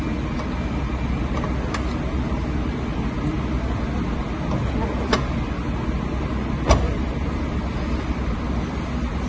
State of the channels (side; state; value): both; identical; correlation 1.00